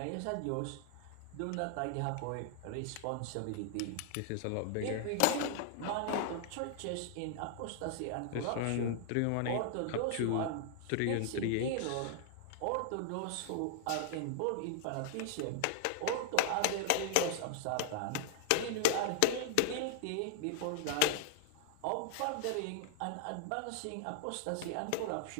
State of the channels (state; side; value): different; both; correlation -0.01